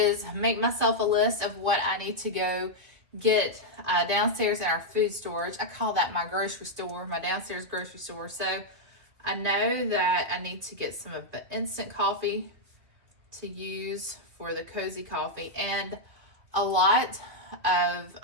make myself a list of what I need to go get downstairs in our food storage. I call that my grocery store, my downstairs grocery store. So I know that I need to get some of the instant coffee to use for the cozy coffee, and a lot of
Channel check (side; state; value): left; late; 2.6 ms